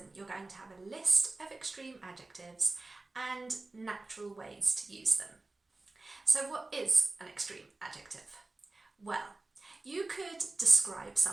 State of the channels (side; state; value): left; quieter; 3.2 dB